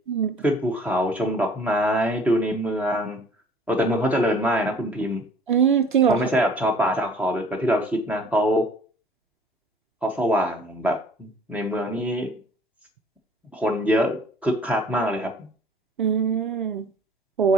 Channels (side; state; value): both; normal; correlation 0.52